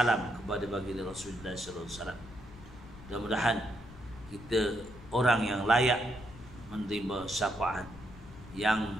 kepada baginda Rasulullah sallallahu alaihi wasallam. Mudah-mudahan kita orang yang layak menerima syafaat yang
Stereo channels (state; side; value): noise; left; rumble, 17 dB below the sound